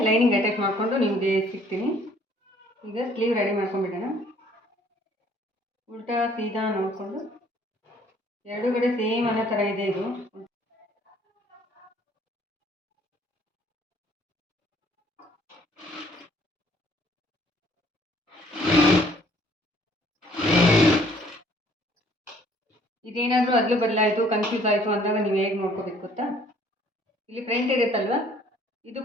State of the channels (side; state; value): both; normal; correlation 0.59